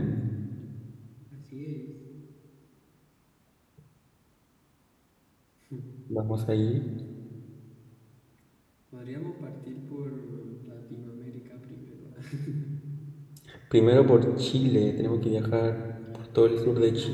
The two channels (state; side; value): identical; both; correlation 1.00